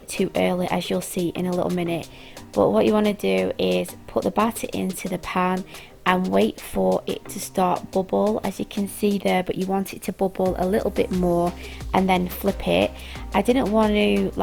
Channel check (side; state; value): both; identical; correlation 1.00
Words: too early, as you'll see in a little minute. But what you want to do is put the batter into the pan and wait for it to start bubble, as you can see there, but you want it to bubble a little bit more and then flip it. I didn't want to